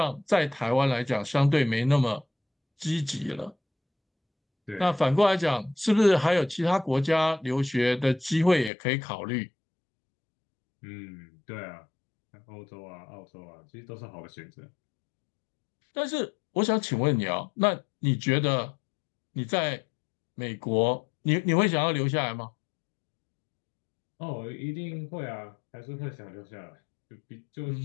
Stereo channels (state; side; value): drops out; right; at 8.7 s